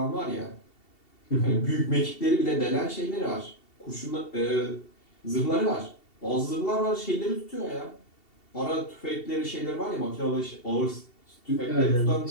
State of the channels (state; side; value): late; right; 2.7 ms